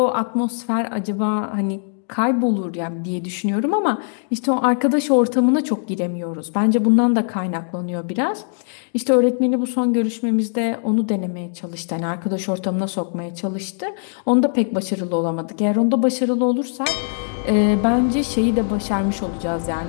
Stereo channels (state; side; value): silent; right; digital silence